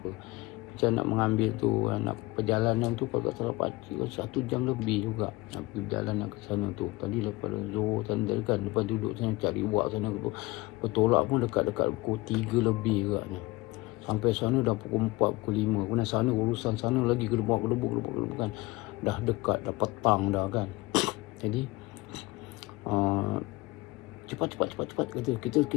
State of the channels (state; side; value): quieter; right; 21.4 dB